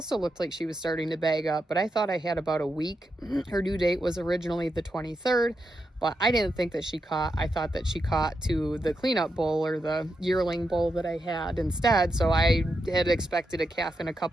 looked like she was starting to bag up, but I thought I had about a week. Her due date was originally the 23rd, but I didn't think that she caught. I thought that she caught to the cleanup bull or the yearling bull that I had instead, so I had expected a calf in a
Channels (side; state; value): both; normal; correlation 0.85